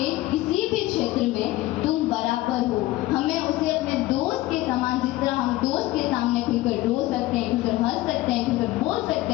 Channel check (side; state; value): right; quieter; 17.6 dB